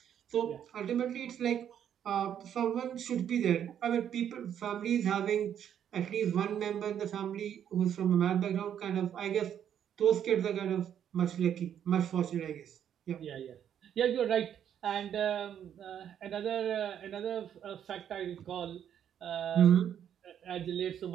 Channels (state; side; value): quieter; left; 9.4 dB